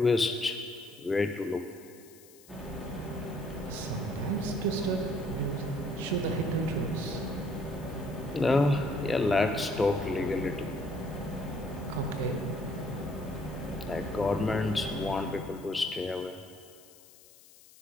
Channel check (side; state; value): left; noise; hiss, 23 dB below the sound